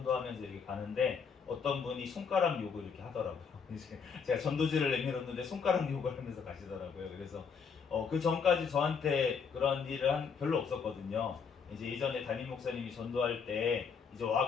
이렇게 가는데 어떤 분이 손가락 욕을 이렇게 하더라고요. 제가 전도지를 내밀었는데 손가락 욕을 하면서 가시더라고요. 그래서 그 전까지 저한테 그런 일을 별로 없었거든요. 이제 예전에 담임 목사님이 전도할 때 이제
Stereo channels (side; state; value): right; quieter; 6.0 dB